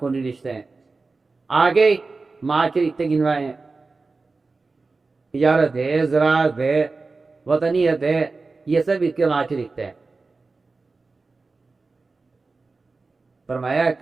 رشتے ہیں. آگے معاشرے اتنے گنوائے ہیں، تجارت ہے، زراعت ہے، وطنیت ہے، یہ سب اس کے معاشرے رشتے ہیں. فرمایا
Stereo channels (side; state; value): left; quieter; 3.9 dB